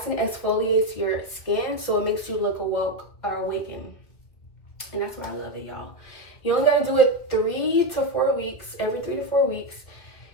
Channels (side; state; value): right; late; 2.3 ms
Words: your skin, so it makes you look awoke or awakened. And that's why I love it, y'all. You only gotta do it 3 to 4 weeks, every 3 to 4 weeks.